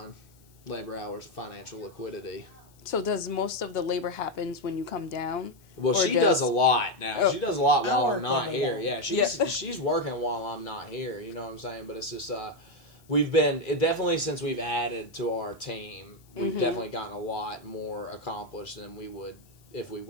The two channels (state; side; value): noise; left; hiss, 30 dB below the sound